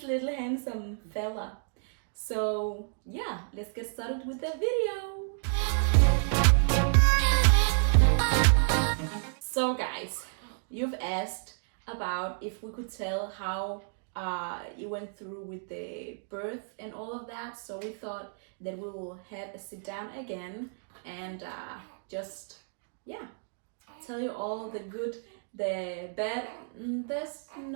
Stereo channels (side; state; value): left; silent; digital silence